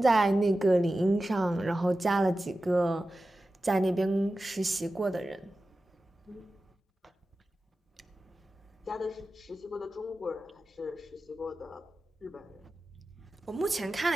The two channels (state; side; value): normal; both; correlation 0.94